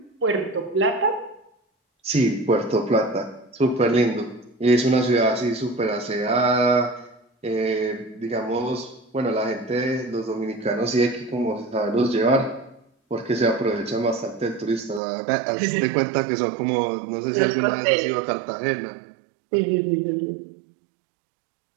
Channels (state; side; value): drops out; left; at 15.0 s